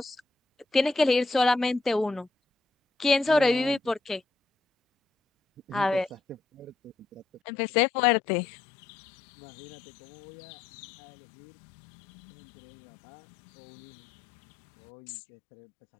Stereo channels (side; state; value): right; drops out; at 7.4 s